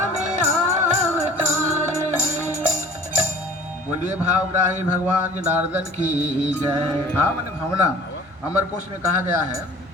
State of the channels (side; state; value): both; normal; correlation 0.47